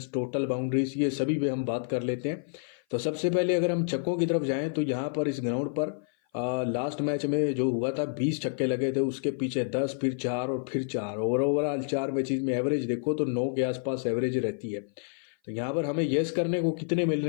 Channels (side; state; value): right; silent; 55 dB below the other